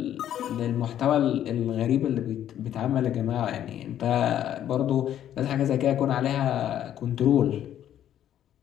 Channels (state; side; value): quieter; right; 10.9 dB